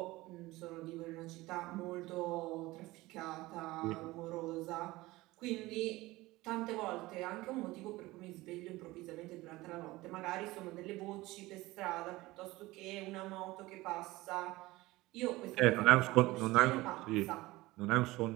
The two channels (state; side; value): quieter; left; 19.5 dB